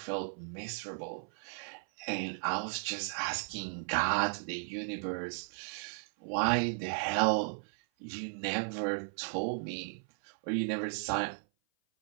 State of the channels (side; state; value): left; silent; 54 dB below the other